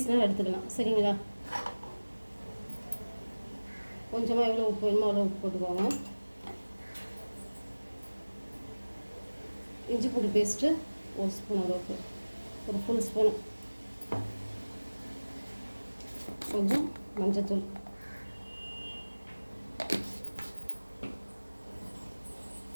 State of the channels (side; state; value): both; inverted; correlation -1.00